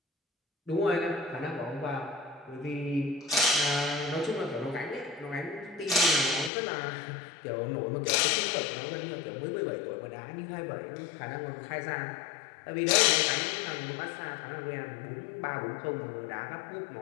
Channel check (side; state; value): right; drops out; at 6.5 s